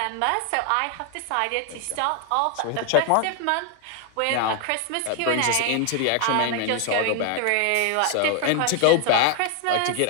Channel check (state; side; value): different; both; correlation 0.00